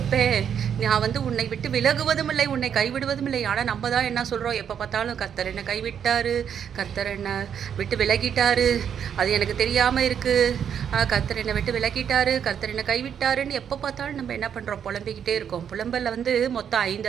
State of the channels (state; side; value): quieter; left; 8.4 dB